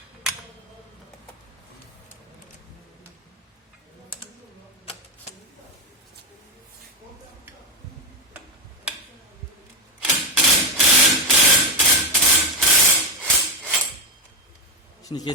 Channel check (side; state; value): both; normal; correlation 0.10